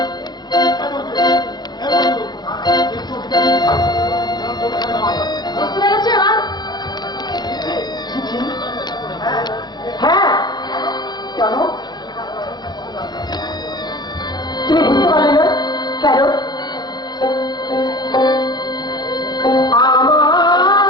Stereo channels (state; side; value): late; right; 0.21 ms